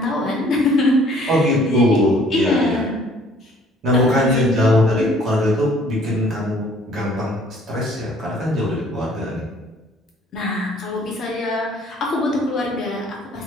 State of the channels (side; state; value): both; normal; correlation 0.57